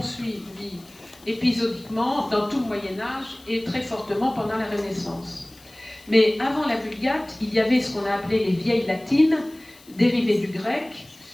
épisodiquement dans tout le Moyen-Âge et très fortement pendant la Renaissance. Mais avant la Vulgate, il y avait ce qu'on a appelé les vieilles latines, dérivées du grec,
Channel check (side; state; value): left; noise; hiss, 25 dB below the sound